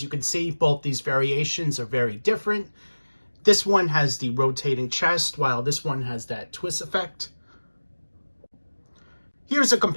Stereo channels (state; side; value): inverted; both; correlation -1.00